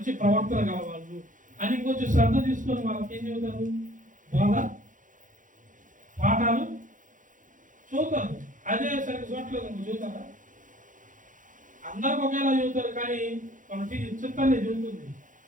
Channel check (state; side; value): late; left; 0.38 ms